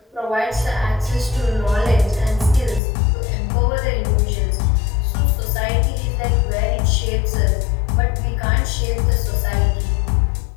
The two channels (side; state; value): right; drops out; at 2.8 s